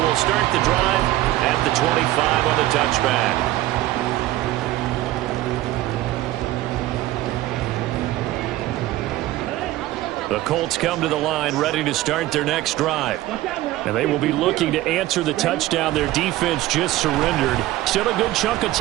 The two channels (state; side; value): quieter; left; 16.0 dB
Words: we'll start the drive at the 25 on the touchback. The Colts come to the line ready to start their next drive. And they will be looking to answer the touchdown their defense just surrendered. Still a good chunk of